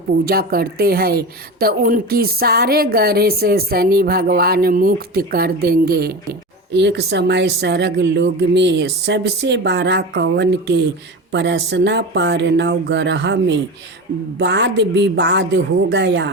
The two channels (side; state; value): both; normal; correlation 0.26